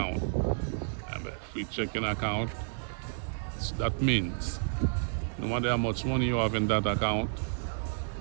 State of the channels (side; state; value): left; silent; digital silence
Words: And a free checking account, that means no matter how much money you have in that account,